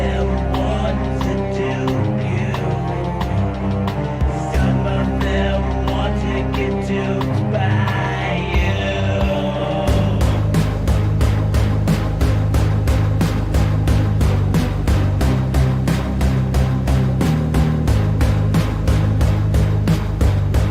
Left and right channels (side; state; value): both; identical; correlation 1.00